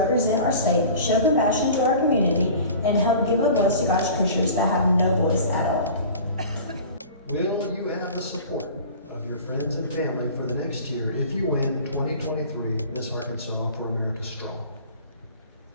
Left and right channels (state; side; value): inverted; both; correlation -0.41